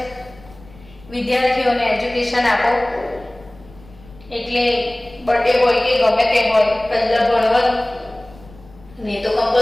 વિદ્યાર્થીઓને એજ્યુકેશન આપો। એટલે બર્થડે હોય કે ગમે તે હોય, પહેલા ભણવાનું ને તો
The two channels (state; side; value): noise; left; rumble, 23 dB below the sound